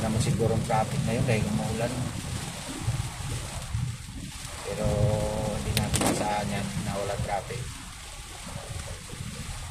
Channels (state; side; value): identical; both; correlation 1.00